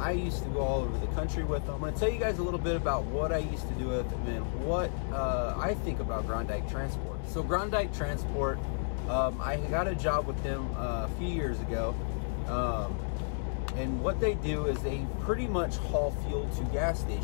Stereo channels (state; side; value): silent; right; digital silence